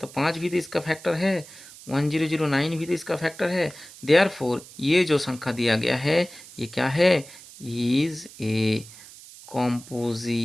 5 भी तो इसका फैक्टर है, 1009 भी तो इसका फैक्टर है। देयरफॉर ये जो संख्या दिया गया है ये क्या है, इज ए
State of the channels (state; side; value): noise; right; hiss, 18 dB below the sound